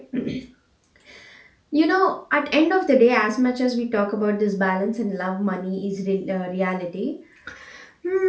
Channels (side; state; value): both; identical; correlation 1.00